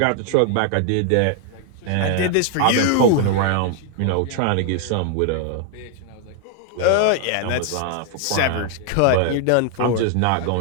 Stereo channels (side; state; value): both; different; correlation 0.00